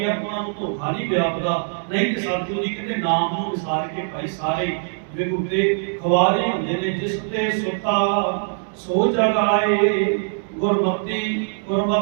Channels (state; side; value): silent; left; digital silence